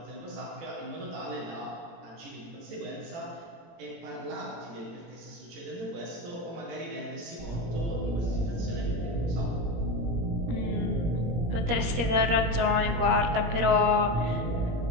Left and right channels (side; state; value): left; late; 17 ms